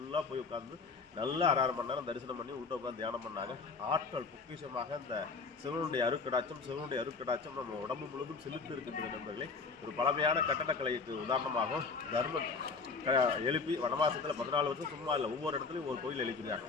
போய் உட்காந்து நல்லா 6 மணி நேரம் தரிசனம் பண்ணி உள்ள உட்காந்து தியானம் பண்ணாங்க. ஆற்றல் பொக்கிஷமாக இந்த சிவனுடைய அருட்கடாட்சம் நம்ம உடம்பு முழுவதும் செலுத்து இருக்கின்றது நண்பர்களே. ஒரு பழமையான கட்டடக்கலைக்கு உதாரணமாகவும் தர்மன் எழுப்பி வனவாசத்தில் 14 வருஷம் சும்மா இல்லை, ஒவ்வொரு இடத்துலையும் ஒரு கோயில் எழுப்பினாங்க.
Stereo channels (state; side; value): quieter; right; 4.6 dB